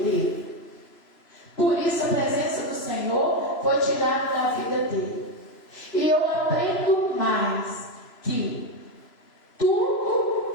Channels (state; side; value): late; right; 3.0 ms